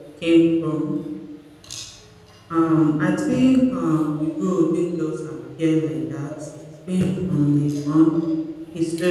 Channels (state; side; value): identical; both; correlation 1.00